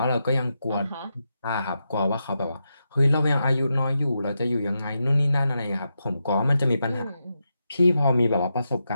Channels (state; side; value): inverted; both; correlation -0.86